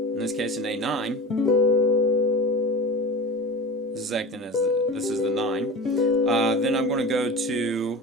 in this case an A9. This is acting as this is the 9. Then I'm going to go to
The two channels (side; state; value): both; normal; correlation 0.31